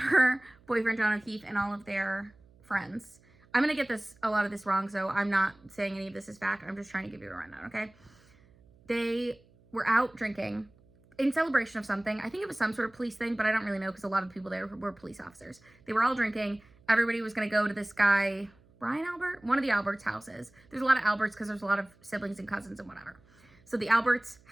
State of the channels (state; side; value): noise; right; hum, 29 dB below the sound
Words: boyfriend, John O'Keefe, and all of their friends. I'm going to get a lot of this wrong, so I'm not saying any of this is fact. I'm just trying to give you a rundown, okay? They were out drinking in celebration of something. I think it was some sort of police thing, but I don't really know because a lot of people there were police officers. They were all drinking. Everybody was going to go to this guy, Brian Albert, one of the Alberts' houses. There's a lot of Alberts because there's a lot of siblings and cousins and whatever. So the Alberts'